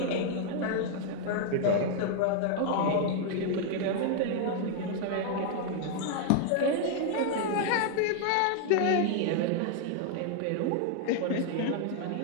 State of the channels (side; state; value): both; different; correlation 0.00